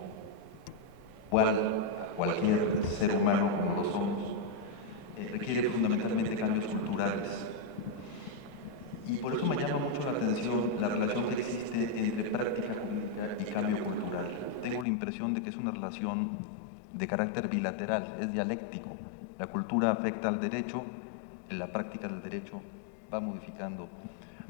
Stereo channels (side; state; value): right; drops out; at 14.9 s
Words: igual a cualquier ser humano como lo somos, requiere fundamentalmente cambios culturales. Y por eso me llama mucho la atención la relación que existe entre práctica jurídica y cambio cultural. Tengo la impresión de que es una relación de carácter bilateral, es dialéctico. La cultura afecta al derecho, la práctica del derecho va modificando